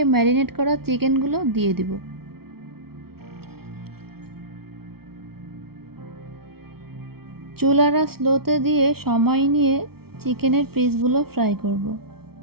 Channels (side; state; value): left; late; 0.95 ms